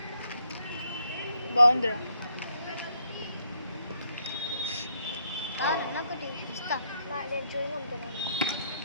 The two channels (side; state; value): both; inverted; correlation -0.73